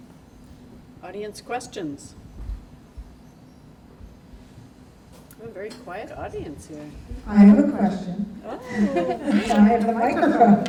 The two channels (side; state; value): both; identical; correlation 1.00